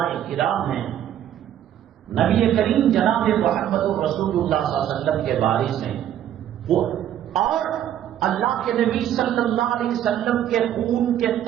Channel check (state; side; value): quieter; left; 10.9 dB